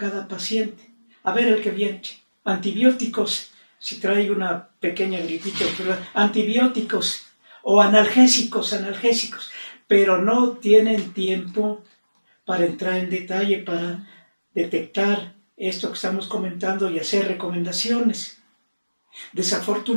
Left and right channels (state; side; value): inverted; both; correlation -1.00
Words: paciente. A ver el que viene, antibióticos, si trae una pequeña gripita, antibióticos o analgésicos, pero no tienen tiempo para entrar en detalle, para detectar esto que estamos comentando y hacer recomendaciones.